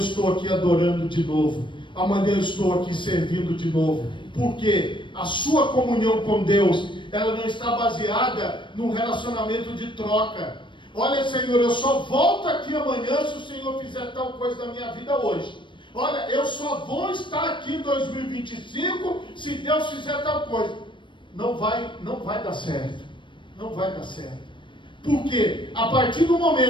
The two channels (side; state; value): right; late; 0.24 ms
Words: aqui adorando de novo, amanhã eu estou aqui servindo de novo, porque a sua comunhão com Deus, ela não está baseada num relacionamento de troca. Olha, Senhor, eu só volto aqui amanhã se o Senhor fizer tal coisa na minha vida hoje. Olha, eu só vou estar aqui em 2025 se Deus fizer tal coisa. Não vai dar certo. Não vai dar certo. Porque a partir do